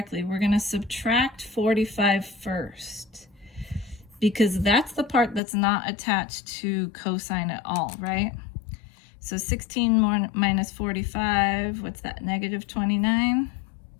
We're gonna subtract 45 first because that's the part that's not attached to cosine at all, right? So 16 more minus 45, what's that, negative 29?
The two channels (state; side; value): drops out; right; at 5.4 s